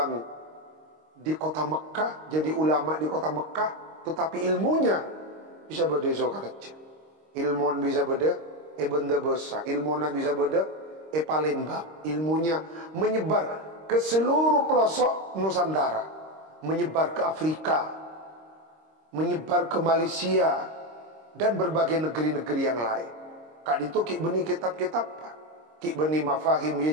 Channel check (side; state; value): left; late; 26 ms